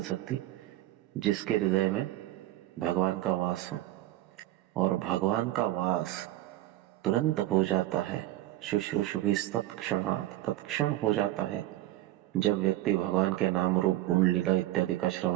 सकती जिसके हृदय में भगवान का वास हो। और भगवान का वास तुरंत हो जाता है, शुश्रूषुभिस्तत्क्षणात्, तत्क्षण हो जाता है जब व्यक्ति भगवान के नाम रूप गुण लीला इत्यादि का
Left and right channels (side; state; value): left; quieter; 15.5 dB